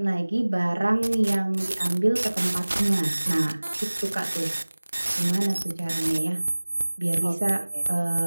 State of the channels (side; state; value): both; inverted; correlation -1.00